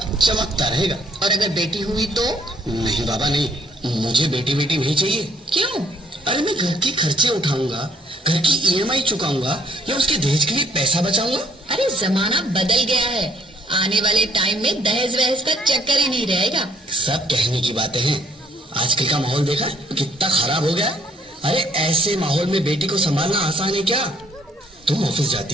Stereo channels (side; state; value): both; normal; correlation 0.64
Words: चमकता रहेगा। और अगर बेटी हुई तो? नहीं बाबा नहीं, मुझे बेटी बेटी नहीं चाहिए। क्यों? अरे मैं घर के खर्चे उठाऊंगा, घर की ईएमआई चुकाऊंगा या उसके दहेज के लिए पैसा बचाऊंगा। अरे जमाना बदल गया है, आने वाले टाइम में दहेज वहेज का चक्कर ही नहीं रहेगा। सब कहने की बातें हैं, आजकल का माहौल देखा कितना खराब हो गया। अरे ऐसे माहौल में बेटी को संभालना आसान है क्या? तुम ऑफिस